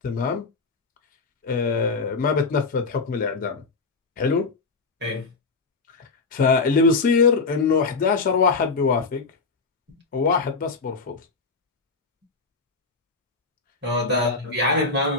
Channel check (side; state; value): right; quieter; 4.3 dB